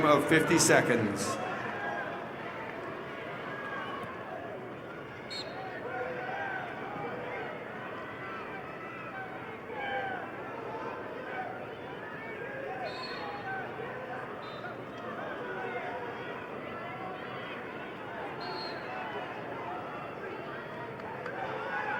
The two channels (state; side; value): identical; both; correlation 1.00